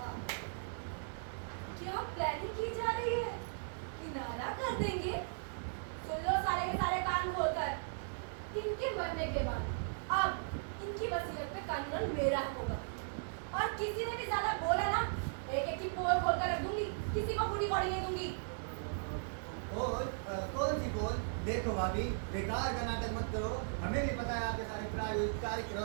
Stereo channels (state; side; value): silent; left; digital silence